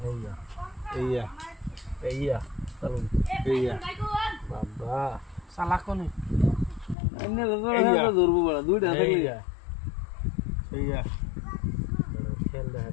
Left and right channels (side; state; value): right; drops out; at 7.0 s